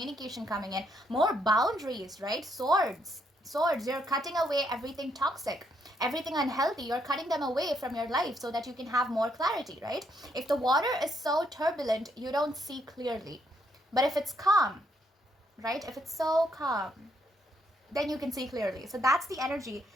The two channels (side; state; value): both; normal; correlation 0.74